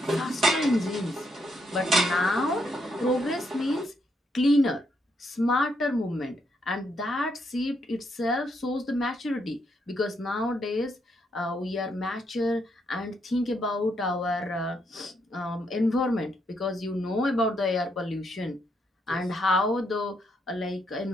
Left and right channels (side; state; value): both; normal; correlation 0.77